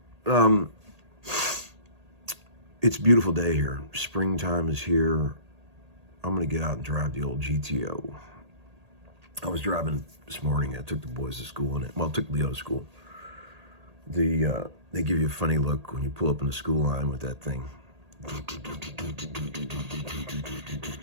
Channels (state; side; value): late; left; 1.8 ms